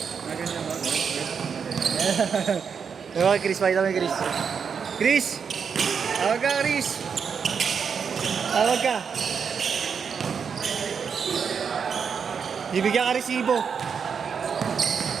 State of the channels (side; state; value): left; quieter; 6.5 dB